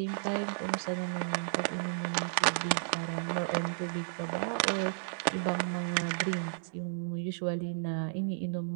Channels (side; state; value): left; silent; 56 dB below the other